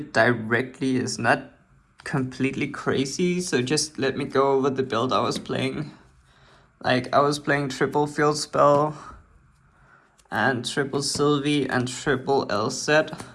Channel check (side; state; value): both; identical; correlation 1.00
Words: directly is not completely crazy. So just let me go over the build I was playing. Like, I was playing triple field spell and triple Sylvie and triple Elset.